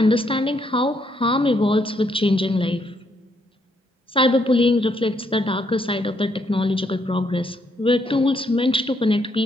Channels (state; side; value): normal; both; correlation 0.73